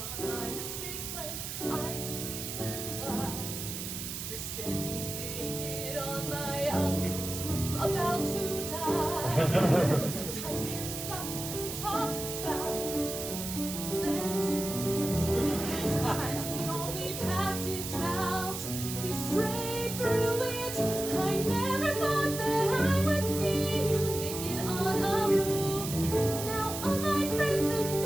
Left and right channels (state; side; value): noise; right; hiss, 6 dB below the sound